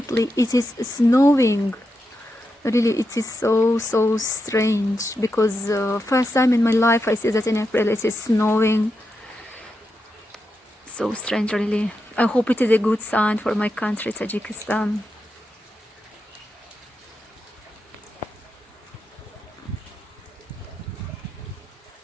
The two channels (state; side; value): normal; both; correlation 0.86